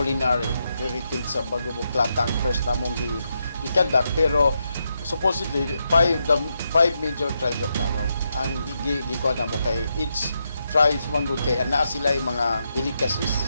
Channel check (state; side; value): inverted; both; correlation -0.83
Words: heritage sa Bagobo-Klata ang first namong gikandak, pero supposedly five major tribes of Davao ang gikuha namo kay each tribes manggod kay ana sila mga